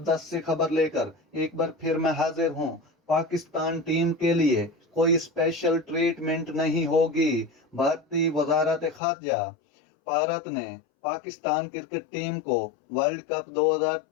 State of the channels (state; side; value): drops out; right; at 9.0 s